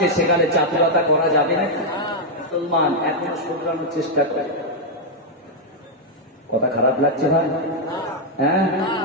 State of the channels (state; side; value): normal; both; correlation -0.01